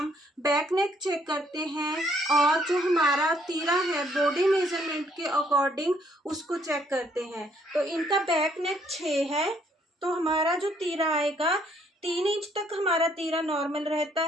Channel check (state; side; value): normal; both; correlation 0.67